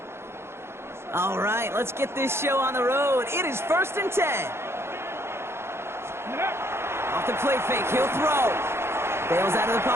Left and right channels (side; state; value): left; late; 0.12 ms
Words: All right, let's get this show on the road. It is 1st and 10. Off the play fake, he'll throw. Bails out of the